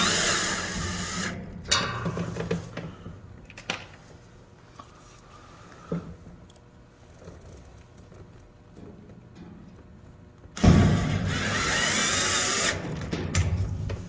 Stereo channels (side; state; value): both; identical; correlation 1.00